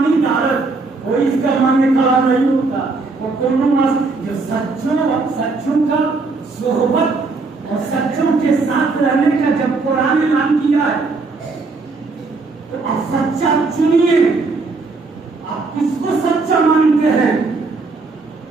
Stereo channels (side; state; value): left; quieter; 3.9 dB